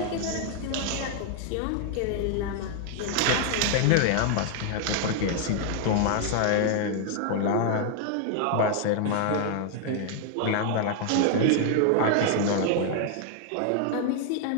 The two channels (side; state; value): both; different; correlation 0.00